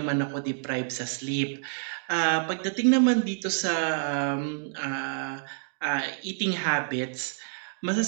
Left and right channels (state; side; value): silent; left; digital silence